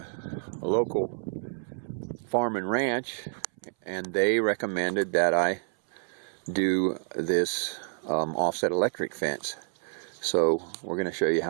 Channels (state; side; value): silent; left; 59 dB below the other